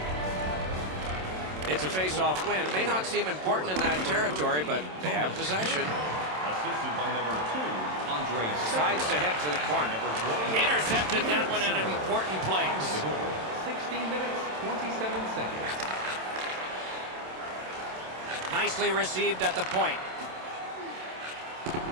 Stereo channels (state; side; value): late; left; 27 ms